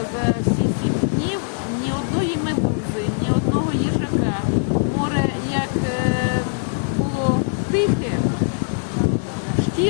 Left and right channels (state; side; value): silent; right; digital silence